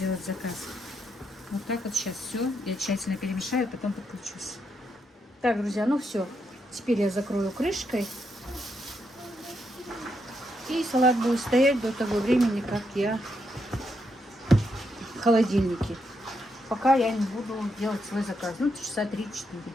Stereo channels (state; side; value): normal; both; correlation 0.80